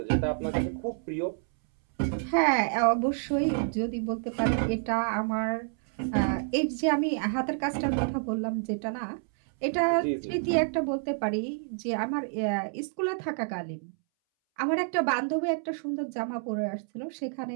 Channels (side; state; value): left; silent; 59 dB below the other